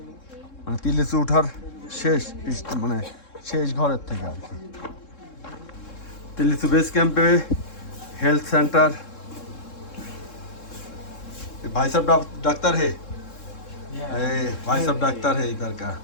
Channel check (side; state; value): right; late; 3.7 ms